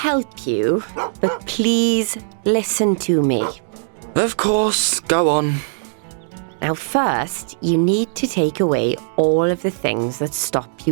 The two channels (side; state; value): left; silent; digital silence